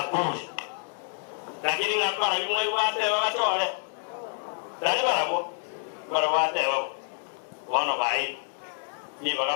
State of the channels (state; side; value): silent; right; 59 dB below the other